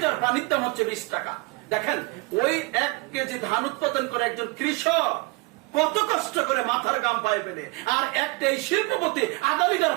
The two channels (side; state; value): left; quieter; 26.2 dB